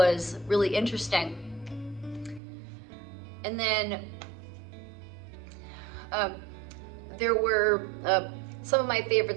really interesting. And then there were some of my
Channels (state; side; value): drops out; left; at 2.4 s